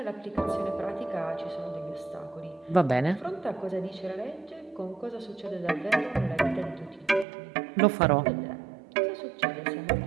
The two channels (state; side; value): drops out; left; at 7.2 s